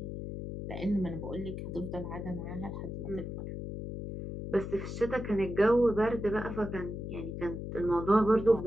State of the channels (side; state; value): left; noise; hum, 6 dB below the sound